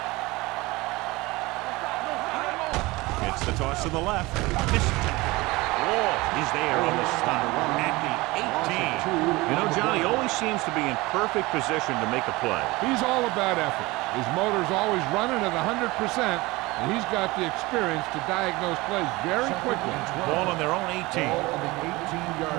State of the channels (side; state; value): left; quieter; 21.8 dB